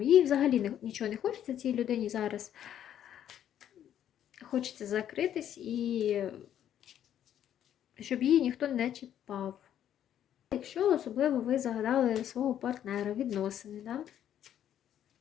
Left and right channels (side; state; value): right; quieter; 10.4 dB